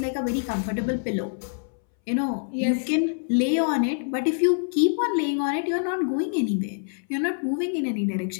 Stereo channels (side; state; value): right; silent; 61 dB below the other